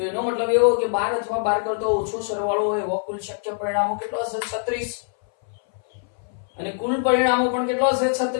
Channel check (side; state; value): right; silent; 60 dB below the other